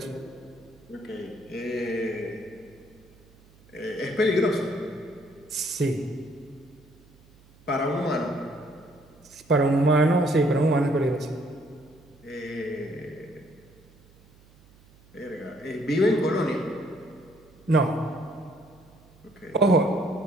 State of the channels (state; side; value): noise; right; hum, 27 dB below the sound